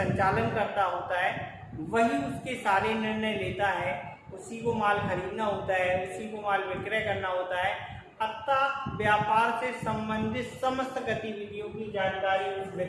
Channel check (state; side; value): identical; both; correlation 1.00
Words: करता होता है, वही उसके सारे निर्णय लेता है, उसी को माल खरीदना होता है, उसी को माल विक्रय करना होता है। अतः व्यापार से संबंधित समस्त गतिविधियों की जानकारी उस